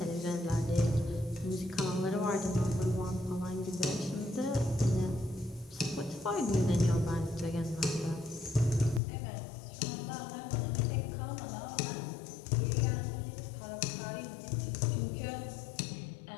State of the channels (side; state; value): right; drops out; at 9.0 s